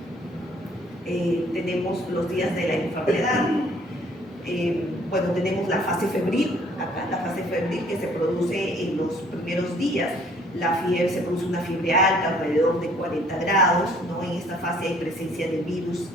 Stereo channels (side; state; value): both; normal; correlation 0.59